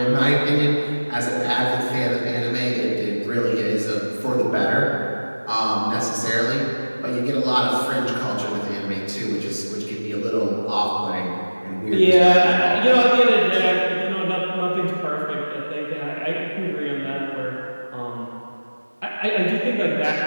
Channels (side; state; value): both; inverted; correlation -1.00